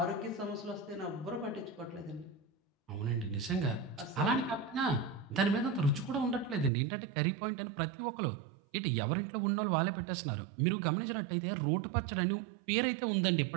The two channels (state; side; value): drops out; left; at 6.7 s